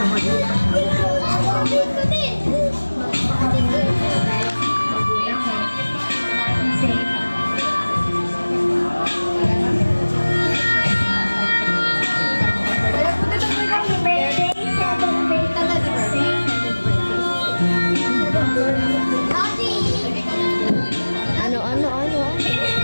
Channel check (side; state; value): both; inverted; correlation -1.00